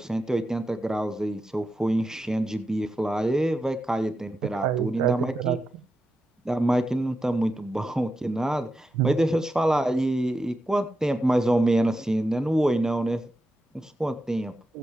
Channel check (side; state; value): both; normal; correlation 0.89